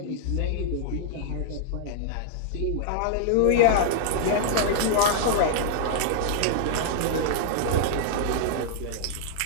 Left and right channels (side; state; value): both; different; correlation -0.01